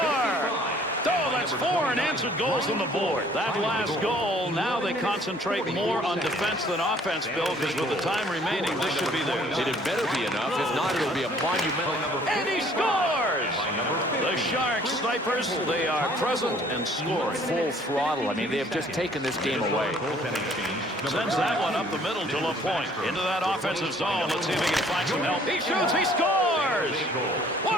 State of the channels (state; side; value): normal; both; correlation 0.58